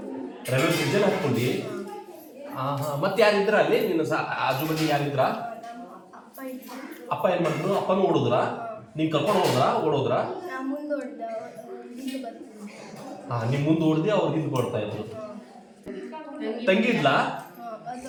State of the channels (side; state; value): both; identical; correlation 1.00